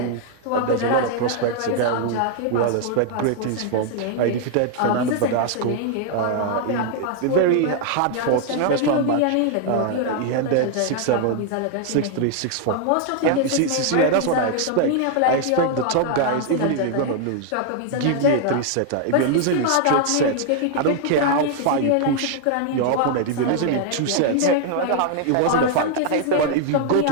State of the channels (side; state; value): both; different; correlation 0.00